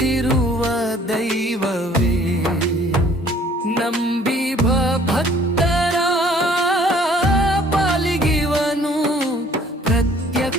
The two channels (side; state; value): both; normal; correlation 0.56